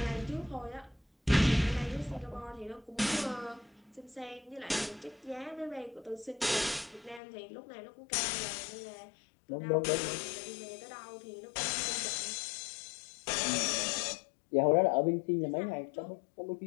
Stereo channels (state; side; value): drops out; right; at 7.2 s